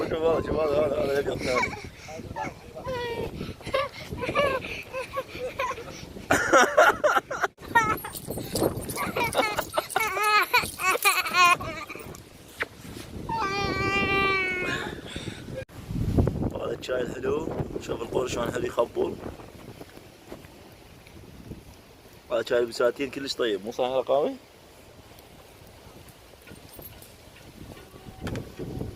شوف هذا الابيض الثاني. هذا الشاي الحلو. شوف القول شلون حلو يخبل. هذا شاي البساتين كلش طيب مو صحيح رقاوي؟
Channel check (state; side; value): identical; both; correlation 1.00